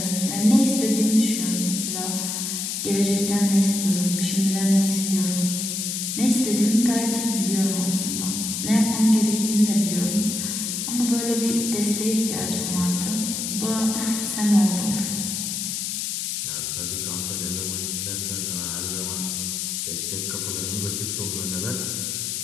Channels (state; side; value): noise; left; hiss, 2 dB below the sound